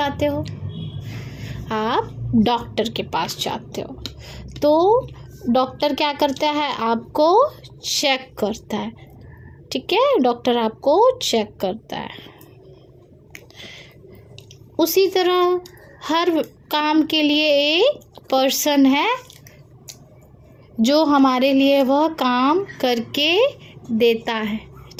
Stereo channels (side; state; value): both; identical; correlation 1.00